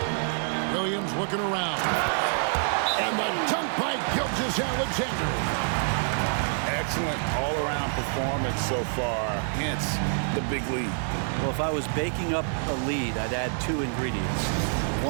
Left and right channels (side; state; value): left; silent; digital silence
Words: Williams looking around. And the dunk by Gilgeous-Alexander. Excellent all-around performance so far, hence the big lead. Well, if I was baking up a lead, I'd add 2 ingredients.